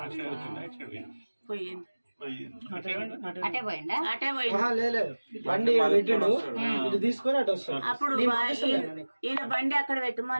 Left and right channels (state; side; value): inverted; both; correlation -1.00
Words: పోయింది. అటే పోయిండా? అటే అప్పుడు ఈయన బండి అక్కడ